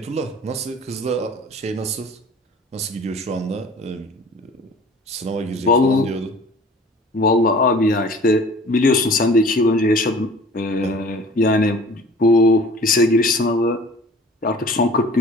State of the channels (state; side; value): normal; both; correlation 0.46